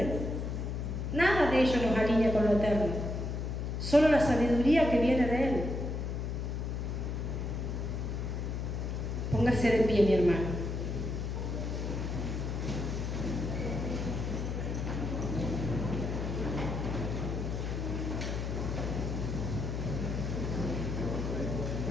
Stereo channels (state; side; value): noise; left; hum, 3 dB below the sound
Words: Nada de ello nos alinea con lo eterno. Solo la sabiduría que viene de Él. Póngase de pie, mi hermano.